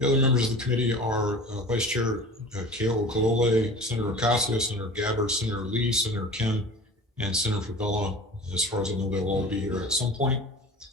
The other members of the committee are Vice Chair Keiko Kalole, Senator Ocasio, Senator Gabbard, Senator Lee, Senator Kim, and Senator Favela. As far as I know, they'll all be here at some point.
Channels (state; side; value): normal; both; correlation 0.39